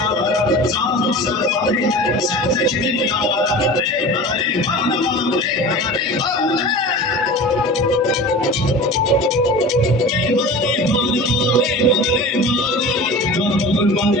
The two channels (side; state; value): both; normal; correlation 0.35